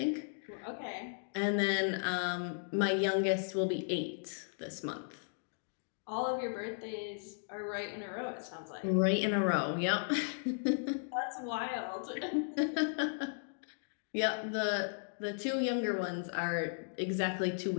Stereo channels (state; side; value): silent; right; digital silence